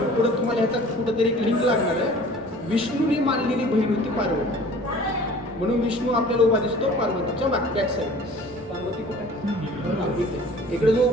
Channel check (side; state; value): right; noise; rumble, 27 dB below the sound